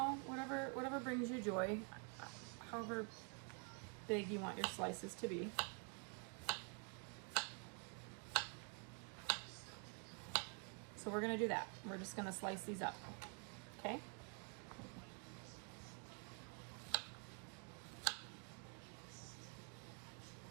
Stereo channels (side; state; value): left; quieter; 36.6 dB